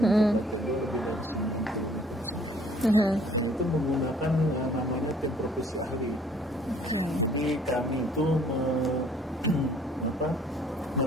itu menggunakan namanya tim profesi ahli. Jadi kami itu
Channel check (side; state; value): both; normal; correlation 0.58